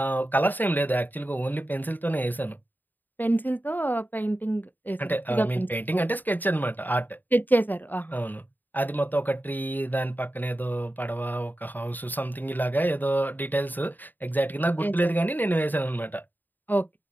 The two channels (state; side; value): late; right; 0.088 ms